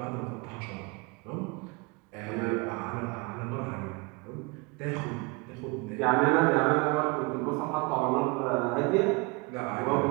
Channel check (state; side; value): quieter; left; 28.1 dB